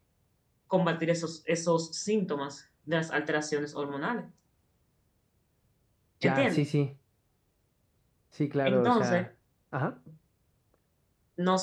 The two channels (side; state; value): both; identical; correlation 1.00